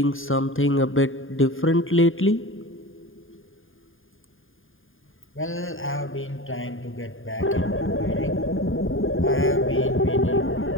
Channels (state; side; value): late; right; 0.59 ms